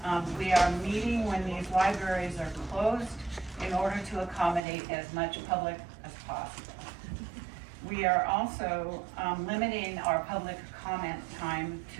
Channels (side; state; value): left; drops out; at 4.6 s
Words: We are meeting when these libraries are closed in order to accommodate as much public as possible. We are also limiting our public comment time